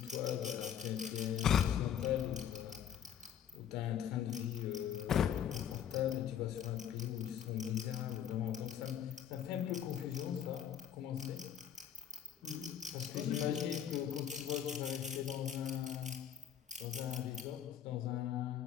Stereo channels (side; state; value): right; quieter; 9.4 dB